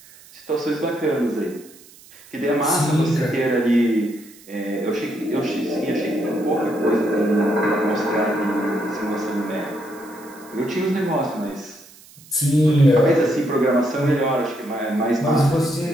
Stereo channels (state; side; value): noise; right; hiss, 23 dB below the sound